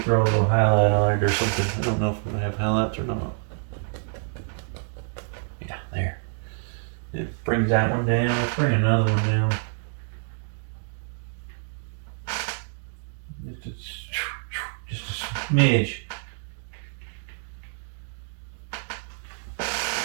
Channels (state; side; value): silent; left; digital silence